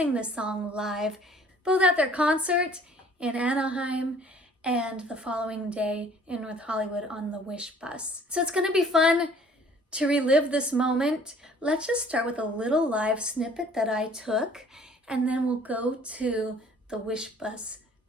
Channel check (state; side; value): normal; both; correlation 0.54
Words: this song live, both at their concert in Anaheim and the following day in North Hollywood on the Wishbus. So it's going to be fun to relive this moment. Let's just start with a little live snippet that I took, and then we'll go to the Wishbus